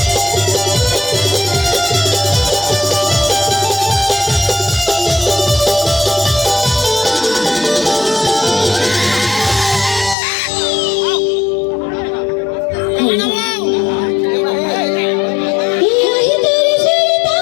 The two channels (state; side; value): drops out; right; at 10.2 s